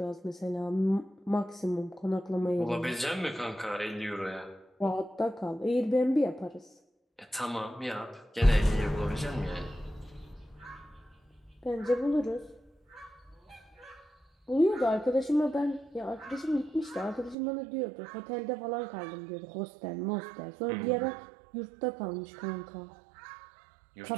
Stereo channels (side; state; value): left; drops out; at 17.4 s